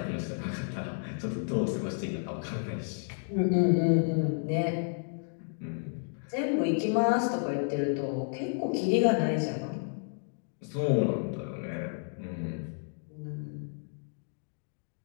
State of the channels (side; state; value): right; silent; digital silence